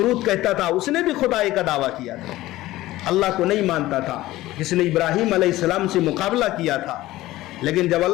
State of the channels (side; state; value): right; quieter; 16.7 dB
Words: کہتا تھا، اس نے بھی خدائی کا دعویٰ کیا تھا، اللہ کو نہیں مانتا تھا، جس نے ابراہیم علیہ السلام سے مقابلہ کیا تھا. لیکن جب